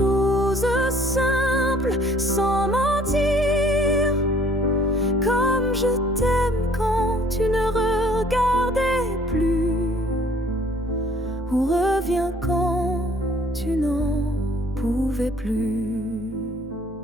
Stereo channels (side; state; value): both; normal; correlation 0.57